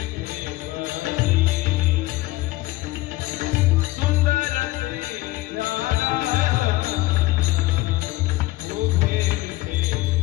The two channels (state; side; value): quieter; right; 18.9 dB